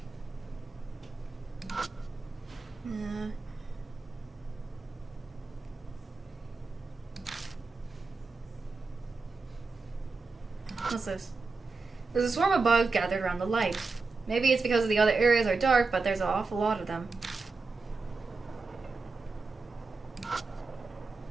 Yeah. What's this? There's a swarm of bugs gathered around the light. Maybe it's because the other areas are dark, but there's an awful lot of them.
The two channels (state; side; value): quieter; left; 4.1 dB